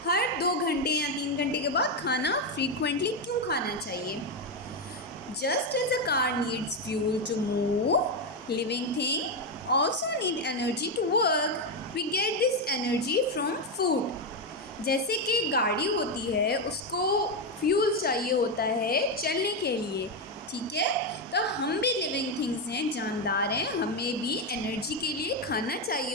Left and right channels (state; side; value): normal; both; correlation 0.07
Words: हर 2 घंटे या 3 घंटे के बाद खाना फ्रीक्वेंटली क्यों खाना चाहिए. Just as a car needs fuel to move, living thing also need energy to work. We get this energy from food. जैसे कि गाड़ी होती है, उसको फ्यूल चाहिए होता है चलने के लिए. ठीक है, तो हम भी लिविंग थिंग्स हैं, जानदार हैं, हमें भी एनर्जी के लिए खाना चाहिए